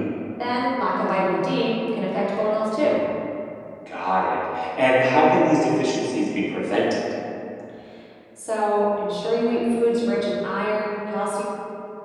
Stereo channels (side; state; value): both; identical; correlation 1.00